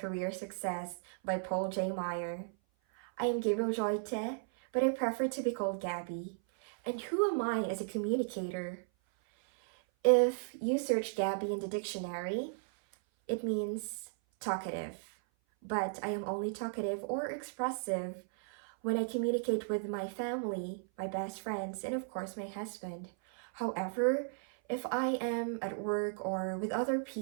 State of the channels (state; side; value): silent; left; 54 dB below the other